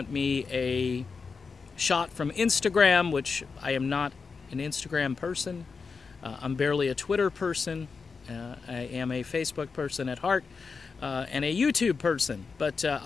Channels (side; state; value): right; quieter; 5.0 dB